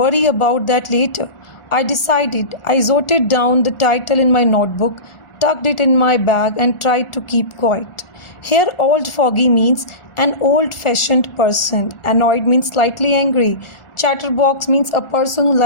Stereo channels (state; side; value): late; right; 1.4 ms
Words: about that later. I decided. I jotted down the title in my notebook, tucked it in my bag, and tried to keep quiet. Here, old fogey means an old-fashioned person. Annoyed means slightly angry. Chatterbox means a person who